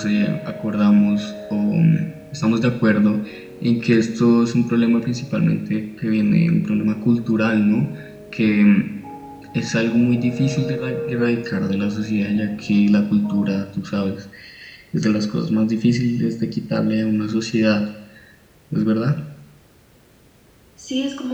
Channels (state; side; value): identical; both; correlation 1.00